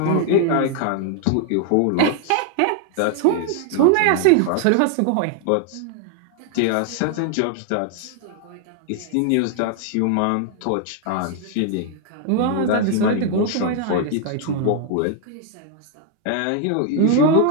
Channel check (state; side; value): different; both; correlation 0.00